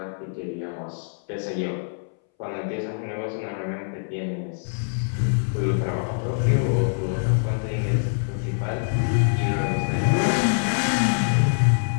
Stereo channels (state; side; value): silent; right; 62 dB below the other